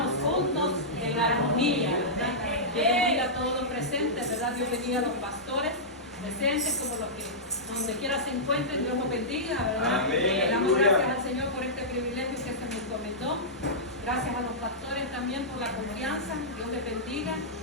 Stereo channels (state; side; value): normal; both; correlation -0.14